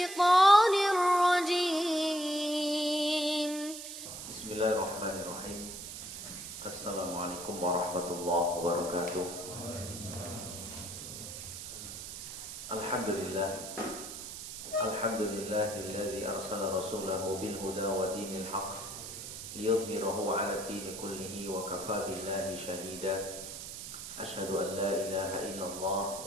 الرجيم. بسم الله الرحمن الرحيم. السلام عليكم ورحمة الله وبركاته. الحمد لله الذي أرسل رسوله بالهدى ودين الحق ليظهره على الدين كله وكفى بالله شهيدا. أشهد أن لا إله إلا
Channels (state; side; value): noise; right; hiss, 9 dB below the sound